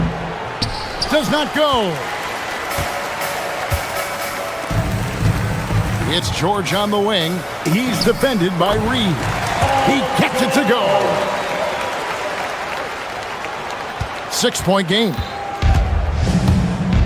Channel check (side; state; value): both; identical; correlation 1.00